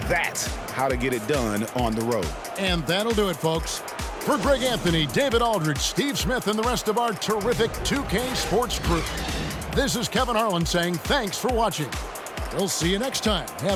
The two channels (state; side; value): identical; both; correlation 1.00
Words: that's how to get it done on the road. And that'll do it, folks. For Greg Anthony, David Aldridge, Steve Smith, and the rest of our terrific 2K Sports crew, this is Kevin Harlan saying thanks for watching. We'll see you next time.